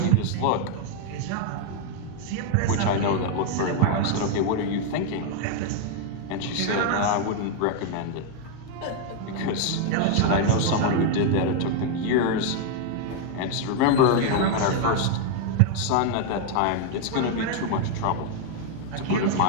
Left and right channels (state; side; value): different; both; correlation 0.00